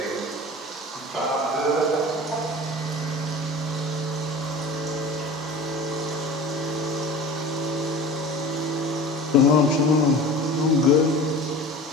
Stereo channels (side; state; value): both; normal; correlation 0.37